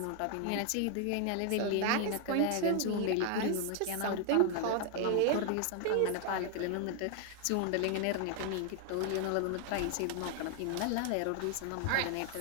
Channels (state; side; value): different; both; correlation 0.00